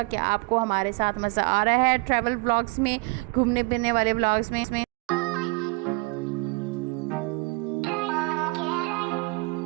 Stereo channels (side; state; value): left; quieter; 28.1 dB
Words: कि आपको हमारे साथ मज़ा आ रहा है ट्रैवल ब्लॉग्स में, घूमने फिरने वाले ब्लॉग्स में।